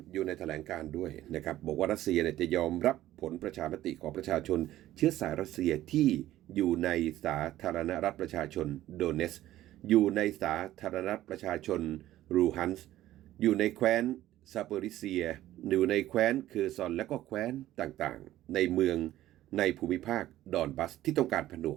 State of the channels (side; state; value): left; quieter; 14.2 dB